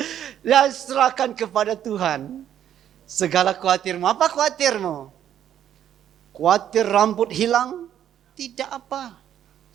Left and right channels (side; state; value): left; quieter; 10.3 dB